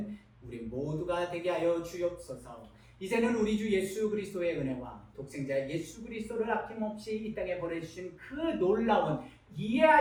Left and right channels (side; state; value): both; identical; correlation 1.00